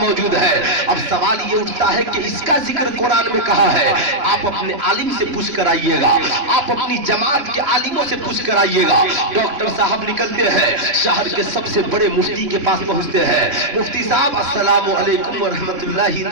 ہے۔ اب سوال یہ اٹھتا ہے کہ اس کا ذکر قرآن میں کہا ہے؟ آپ اپنے عالم سے پوچھ کر آئیے گا، آپ اپنی جماعت کے عالموں سے پوچھ کر آئیے گا۔ ڈاکٹر صاحب نکلتے ہیں، شہر کے سب سے بڑے مفتی کے پاس پہنچتے ہیں، مفتی صاحب السلام علیکم ورحمۃ اللہ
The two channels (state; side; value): late; left; 3.0 ms